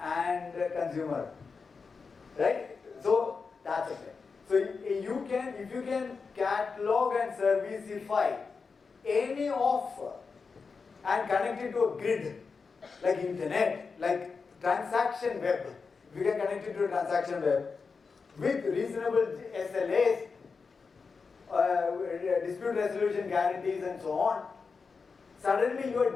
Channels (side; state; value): right; quieter; 4.9 dB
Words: and a consumer, right? So that's a thing. So you can, if you can catalog and serviceify any offer and connect it to a grid, like internet, like transaction web, if you can connect it to a transaction web, with reasonable SLAs, dispute resolution guarantees and so on, suddenly you are